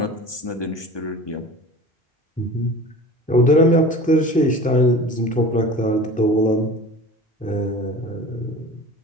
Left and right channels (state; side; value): normal; both; correlation 0.39